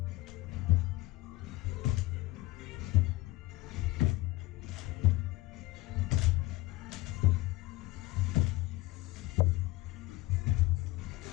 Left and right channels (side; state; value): right; quieter; 18.8 dB